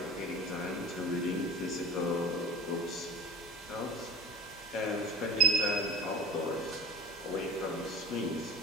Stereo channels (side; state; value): both; normal; correlation 0.36